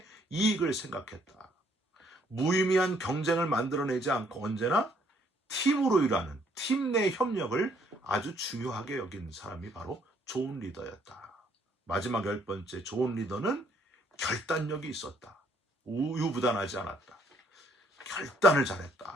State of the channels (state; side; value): normal; both; correlation 0.66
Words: 이익을 생각했다. 무의미한 경쟁을 만들어내지 않고 언제나 팀으로 일하는 팀 내 협력을 아주 중요하게 여긴 사람이 바로 좋은 리더였다. 마지막 열 번째, 좋은 리더는 결단력이 있었다. 우유부단하지 않았다. 결단을